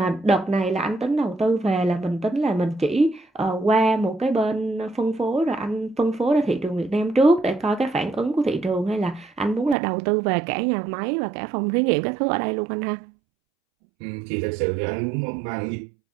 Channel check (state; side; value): drops out; left; at 9.8 s